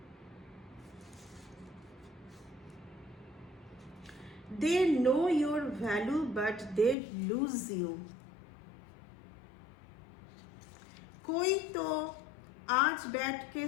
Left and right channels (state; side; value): drops out; right; at 7.0 s